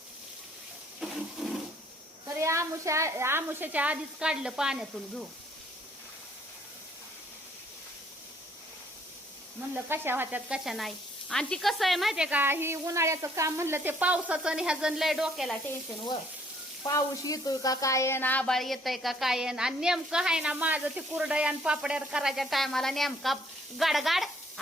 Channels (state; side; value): normal; both; correlation 0.64